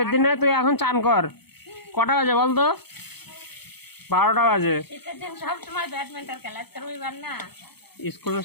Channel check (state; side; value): late; right; 0.97 ms